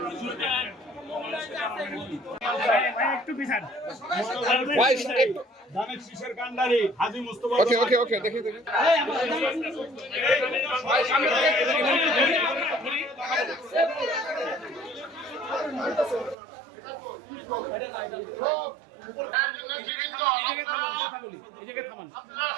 জুড়ে দেন। একটু পিছান ধানের শীষের কান্ডারি হাজী মুস্তফা। ওকে দেখি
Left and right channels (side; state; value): left; drops out; at 16.4 s